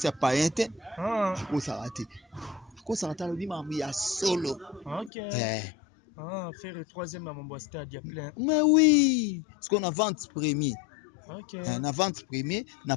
pas inte akosa raté kosa na lobi mambo ya solo. Ok. Faire le troisième à mon stade, il y a plein. Mais oui, parce qu'on a vente premier. Ok. Na vente premier, na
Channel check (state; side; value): drops out; right; at 5.1 s